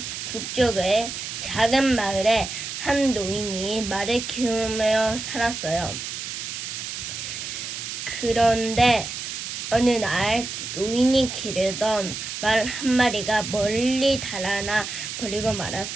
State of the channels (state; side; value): noise; right; hiss, 6 dB below the sound